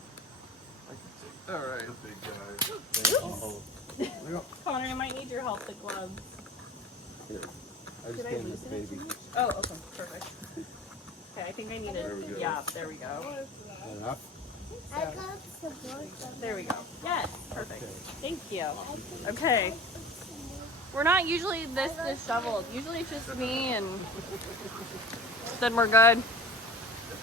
I can take. All right. The big guy. Uh-oh. Connor, I might need your help with gloves. Here. I Did just I gave loosen the it baby. Oh, okay, perfect. Okay, I think I need it. There we go. Yeah, there we go. And up. I got some more. There we go. Yes, perfect. Okay. Thank you. Okay. We're not usually this disheveled. Usually it's just me and then we're good.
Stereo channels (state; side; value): normal; both; correlation 0.37